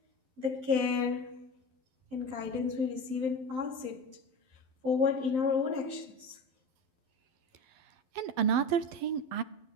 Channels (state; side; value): late; left; 11 ms